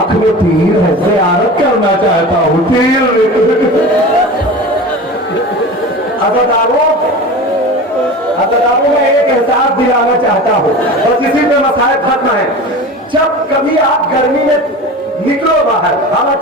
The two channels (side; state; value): both; normal; correlation 0.33